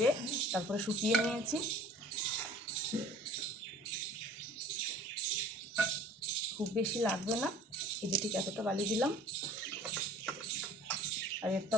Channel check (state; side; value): normal; both; correlation 0.48